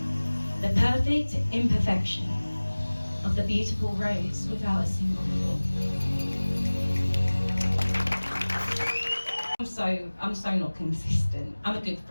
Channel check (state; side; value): inverted; both; correlation -1.00